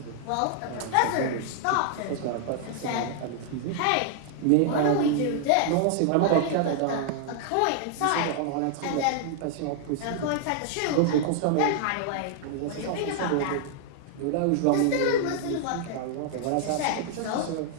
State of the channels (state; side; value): different; both; correlation 0.00